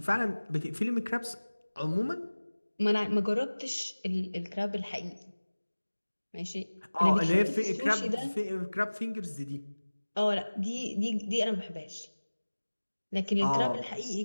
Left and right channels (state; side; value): inverted; both; correlation -1.00